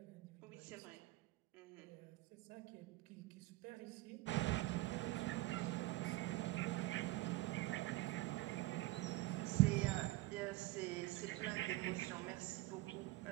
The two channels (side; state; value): left; quieter; 18.9 dB